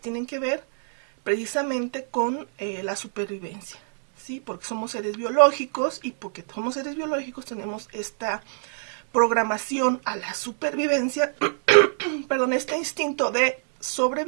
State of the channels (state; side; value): silent; left; digital silence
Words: que ver precisamente con la supervivencia, ¿sí? Porque somos seres biológicos y porque somos seres biológicos tenemos esta programación a la supervivencia, perdón, este instinto de